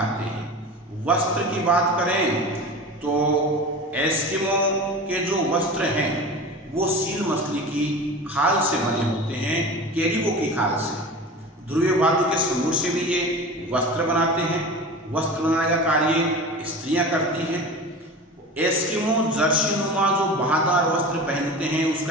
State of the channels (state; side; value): normal; both; correlation 0.33